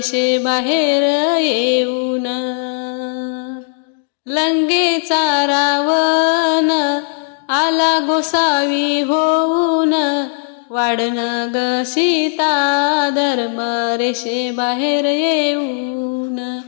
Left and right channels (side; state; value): right; silent; digital silence